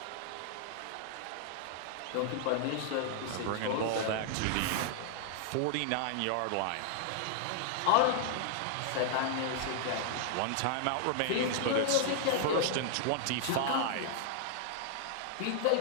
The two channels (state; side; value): different; both; correlation -0.01